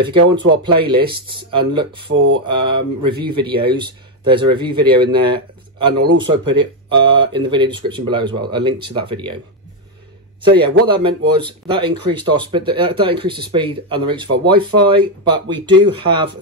you go onto our playlists and look for review videos, there's a review video in there, and I'll also put it in the video description below as well, a link to that video. So yeah, what that meant was that increased our speed, that increased the speed and the reach of our Wi-Fi. But we do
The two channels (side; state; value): both; normal; correlation 0.05